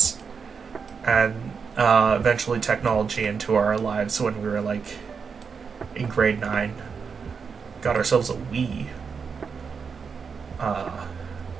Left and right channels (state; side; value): quieter; left; 5.8 dB